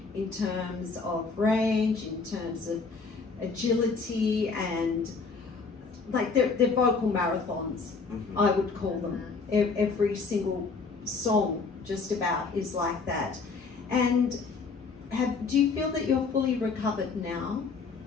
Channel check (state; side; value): quieter; right; 4.6 dB